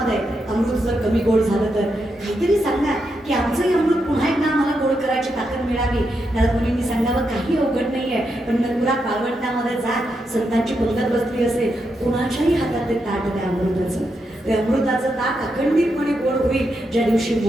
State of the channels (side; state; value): both; normal; correlation 0.83